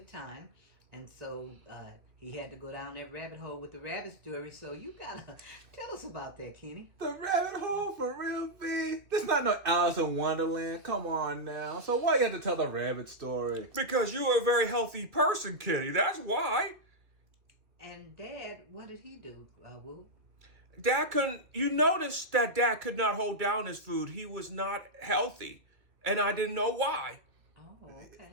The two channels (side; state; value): left; late; 2.3 ms